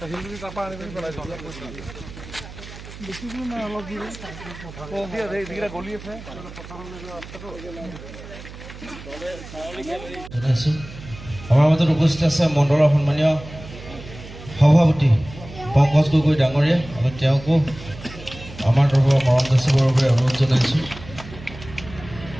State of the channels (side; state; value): right; noise; hum, 15 dB below the sound